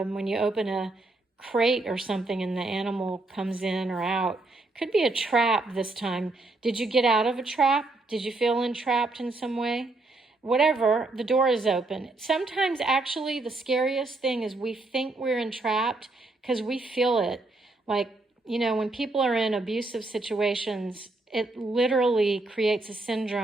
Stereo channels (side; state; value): left; quieter; 3.1 dB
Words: you open a crate or something and the animal comes in or out. Could be a trap this time. Did you get out of a trap? Did you feel entrapped in some way? Whatever, the door is open. Sometimes actually the scariest thing is we think we're entrapped because we feel it. Like, you know, when people are in abusive situations, it literally creates a